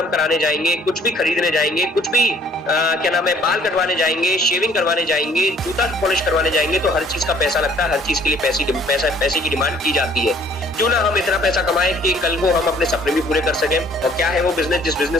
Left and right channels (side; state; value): both; normal; correlation 0.58